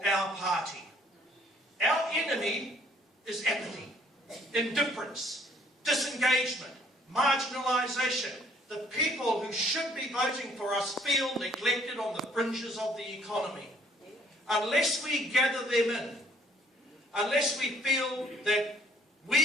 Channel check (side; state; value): both; normal; correlation 0.60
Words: our party. Our enemy is apathy, indifference, disengagement, marginalisation. The people who should be voting for us feel neglected on the fringes of the economy. Unless we gather them in, unless we feel that